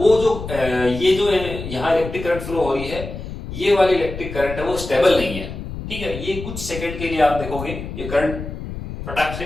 जो ये जो यहाँ इलेक्ट्रिक करंट फ्लो हो रही है ये वाली इलेक्ट्रिक करंट है वो स्टेबल नहीं है, ठीक है। ये कुछ सेकंड के लिए आप देखोगे ये करंट फटाक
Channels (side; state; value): left; noise; rumble, 9 dB below the sound